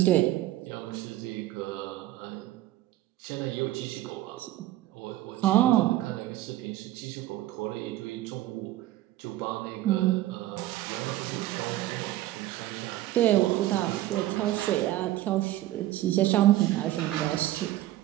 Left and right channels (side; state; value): left; quieter; 15.1 dB